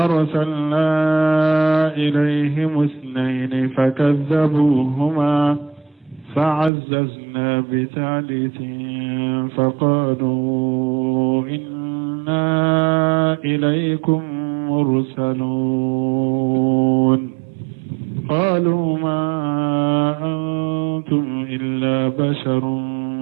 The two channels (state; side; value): drops out; left; at 6.7 s